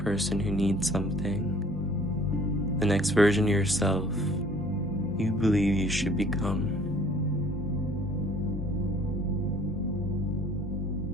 who needs something, the next version of yourself you believe you should become.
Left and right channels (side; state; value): both; normal; correlation 0.53